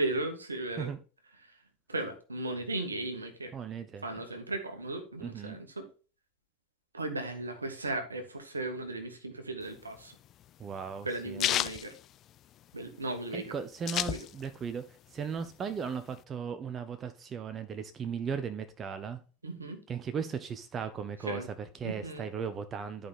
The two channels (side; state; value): both; normal; correlation 0.04